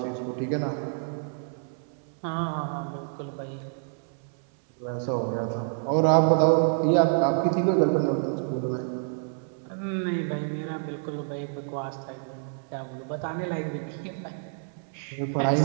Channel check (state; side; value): silent; left; 59 dB below the other